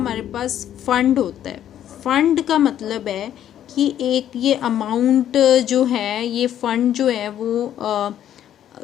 पास फंड होता है। फंड का मतलब है कि एक ये अमाउंट जो है, ये फंड जो है वो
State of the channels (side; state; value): right; quieter; 10.8 dB